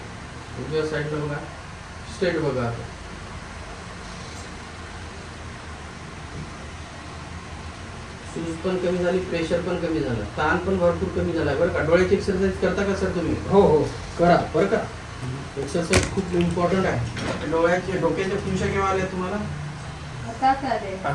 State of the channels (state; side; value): identical; both; correlation 1.00